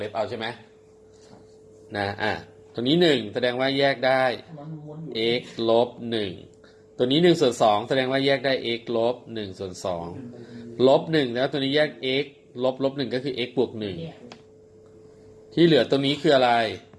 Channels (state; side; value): identical; both; correlation 1.00